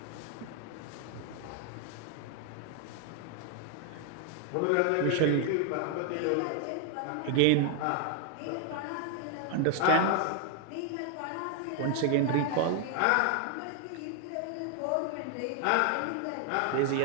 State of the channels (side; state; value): both; different; correlation 0.00